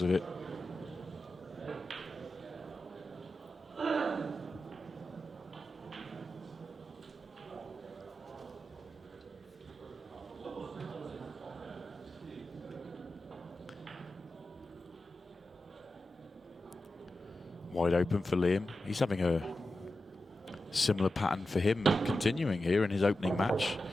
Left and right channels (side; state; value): both; normal; correlation 0.92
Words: of it. Wide open for Liam. He's having a similar pattern for him continuing here in his opening match.